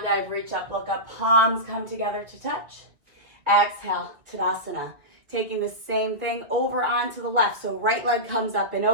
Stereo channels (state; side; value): late; left; 2.2 ms